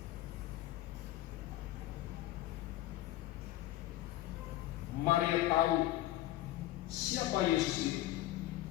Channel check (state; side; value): quieter; right; 15.5 dB